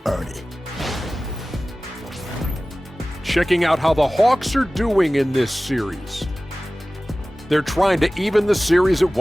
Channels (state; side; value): normal; both; correlation 0.97